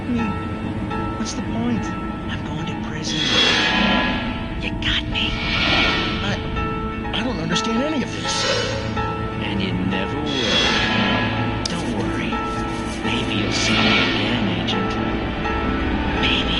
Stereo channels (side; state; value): both; identical; correlation 1.00